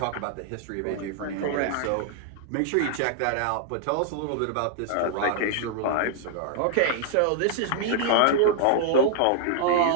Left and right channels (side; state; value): both; different; correlation -0.01